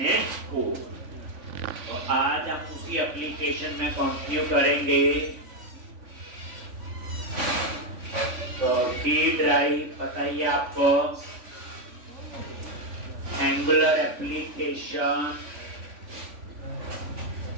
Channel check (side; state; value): left; late; 3.5 ms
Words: को। तो आज हम उसी एप्लीकेशन में कंटिन्यू करेंगे। तो की ड्राइव बताइए आपको, एंगुलर एप्लीकेशन,